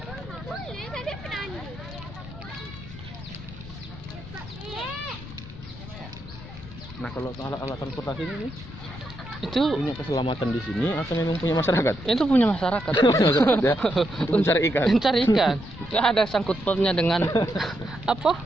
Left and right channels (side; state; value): left; noise; rumble, 14 dB below the sound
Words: Nah kalau alat transportasi ini Itu punya keselamatan di sini atau memang punya masyarakat? itu punya masyarakat. Ya, untuk mencari ikan. Mencari ikan. Nggak ada sangkut pautnya dengan apa